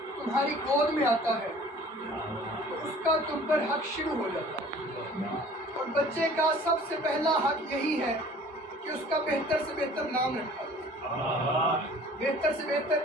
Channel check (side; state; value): both; normal; correlation 0.49